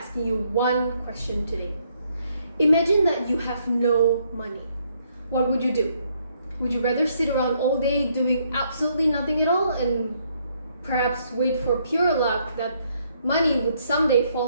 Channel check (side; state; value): both; inverted; correlation -0.71